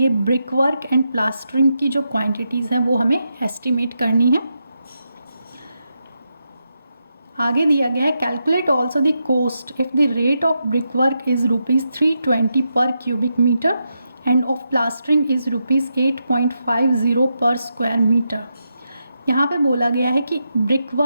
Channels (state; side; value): inverted; both; correlation -0.85